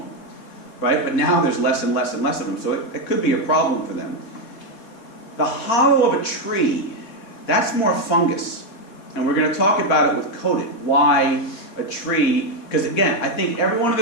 Right? But now there's less and less and less of them, so it could be a problem for them. The hollow of a tree, that's more fungus. And we're going to talk about it with coated. Why a tree, because again, I think everyone in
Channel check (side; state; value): right; late; 4.1 ms